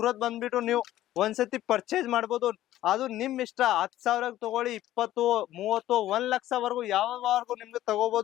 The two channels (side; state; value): right; quieter; 14.0 dB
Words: ಬಂದ್ಬಿಟ್ಟು ನೀವು ಒಂದ್ಸತಿ ಪರ್ಚೇಸ್ ಮಾಡ್ಬೋದು. ಅದು ನಿಮ್ ಇಷ್ಟ. 10,000 ತಗೊಳ್ಳಿ, 20, 30, 1 ಲಕ್ಷವರೆಗೂ ಯಾವವರೆಗೂ ನಿಮ್ಗೆ